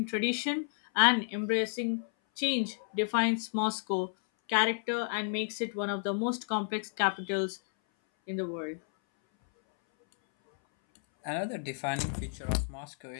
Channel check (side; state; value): right; silent; 57 dB below the other